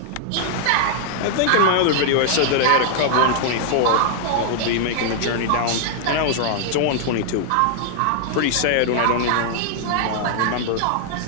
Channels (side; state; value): both; different; correlation 0.00